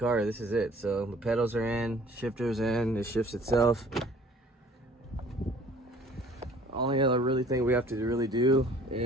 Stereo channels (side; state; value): both; normal; correlation 0.53